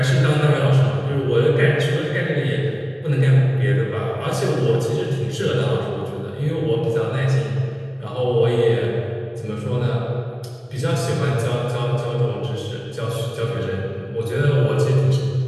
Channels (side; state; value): both; identical; correlation 1.00